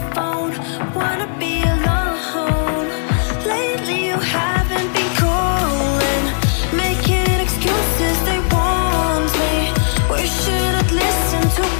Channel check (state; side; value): silent; right; digital silence